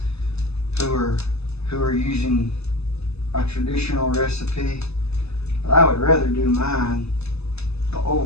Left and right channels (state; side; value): late; right; 0.79 ms